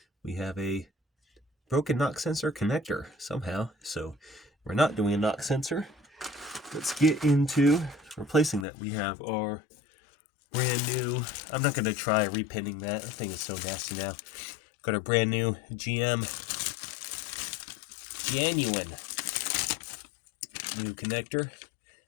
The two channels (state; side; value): drops out; right; at 8.7 s